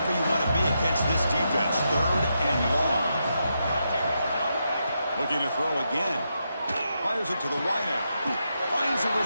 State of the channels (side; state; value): both; inverted; correlation -0.84